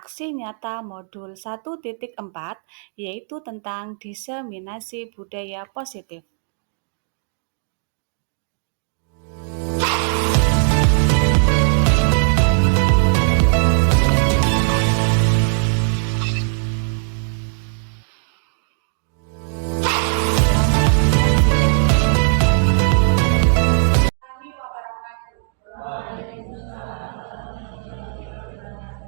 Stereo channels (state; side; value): silent; left; digital silence